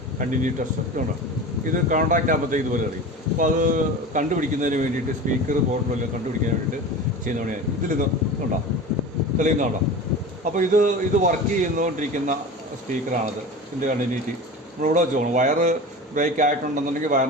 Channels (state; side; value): normal; both; correlation 0.32